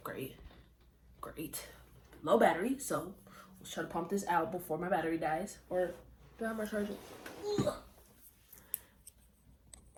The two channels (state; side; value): identical; both; correlation 1.00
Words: Great, low battery, so let's try to pump this out before my battery dies. Or do I have my charger?